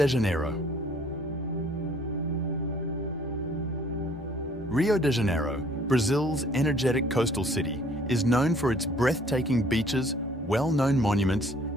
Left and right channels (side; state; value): both; normal; correlation 0.57